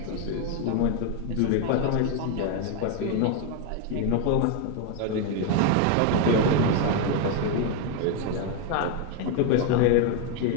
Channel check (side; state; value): both; different; correlation 0.02